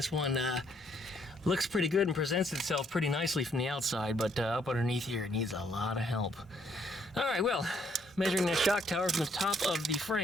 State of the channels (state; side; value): normal; both; correlation 0.69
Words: one looks pretty good and presents itself pretty nicely from the outside, but up underneath here it needs a lot of help. All right, well, measuring that shock tower from the top of the